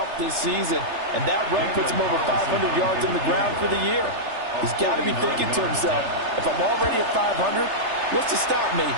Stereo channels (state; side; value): late; left; 3.3 ms